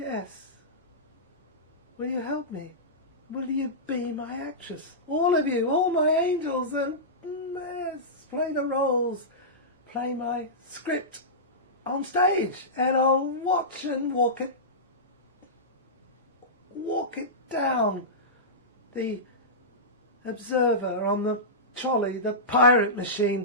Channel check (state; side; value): normal; both; correlation -0.16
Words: Will you help me? Will you be my actress? All of you, all my angels, and yes, play the roles, play my script on stage, and I'll watch and walk it down. The observer on the trolley, the pirate